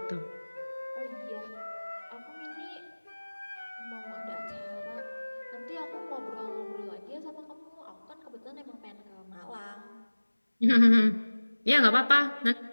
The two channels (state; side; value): inverted; both; correlation -1.00